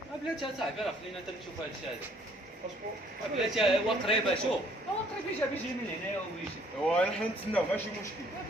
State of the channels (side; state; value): both; normal; correlation 0.61